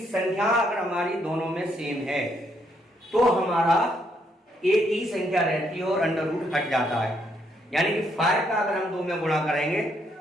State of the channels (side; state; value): both; normal; correlation 0.73